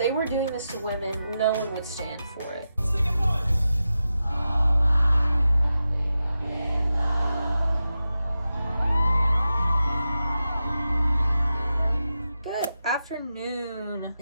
were doing this to women, no one would stand for it. Good afternoon.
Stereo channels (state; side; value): inverted; both; correlation -0.90